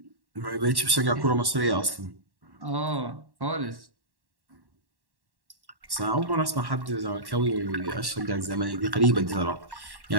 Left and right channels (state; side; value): late; left; 1.1 ms